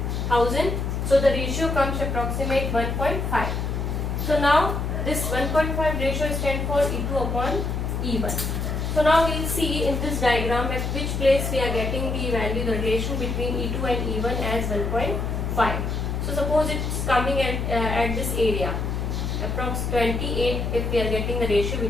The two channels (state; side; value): noise; left; hum, 2 dB below the sound